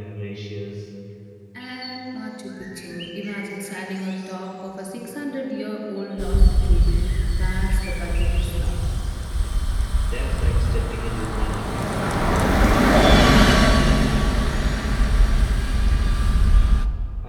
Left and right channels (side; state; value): both; identical; correlation 1.00